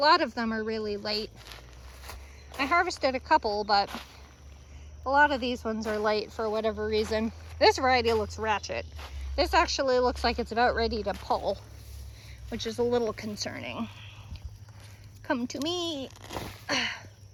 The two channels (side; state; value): both; identical; correlation 1.00